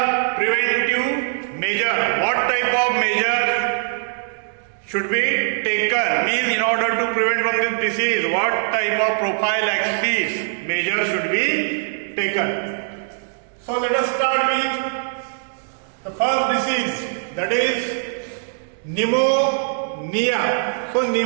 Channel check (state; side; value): silent; left; digital silence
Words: preventive measure. What type of measure should be taken means in order to prevent from this disease, what type of prophylaxis measure should be taken. So let us start with the first disease, that is pneumonia. So